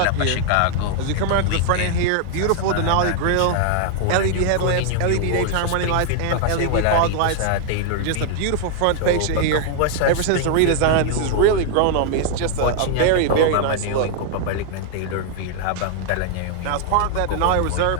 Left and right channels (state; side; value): different; both; correlation 0.00